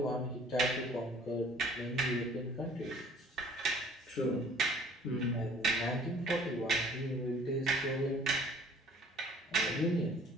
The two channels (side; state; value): both; normal; correlation 0.53